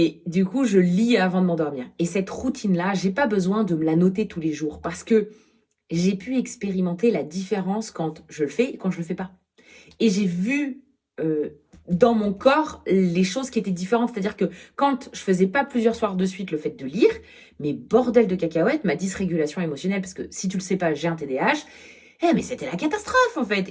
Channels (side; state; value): both; identical; correlation 1.00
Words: du coup, je lis avant de m'endormir. Et cette routine-là, j'ai pas besoin de me la noter tous les jours parce que j'ai pu expérimenter la différence quand je le fais et quand je le fais pas. Et j'ai vu dans mon corps les choses qui étaient différentes. C'est-à-dire que quand je faisais pas plusieurs soirs de suite le fait de lire, mais bordel de cacahuètes, ma dysrégulation émotionnelle, parce que si tu le sais pas, j'ai un TDAH, Mais c'était la catastrophe, en fait.